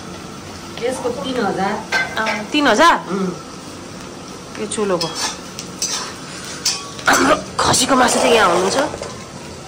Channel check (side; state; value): both; identical; correlation 1.00